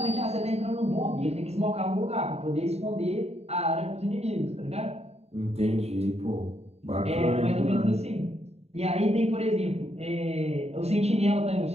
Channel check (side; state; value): left; late; 0.30 ms